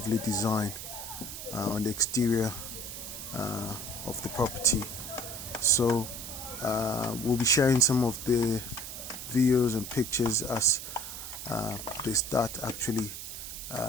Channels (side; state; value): right; noise; hiss, 9 dB below the sound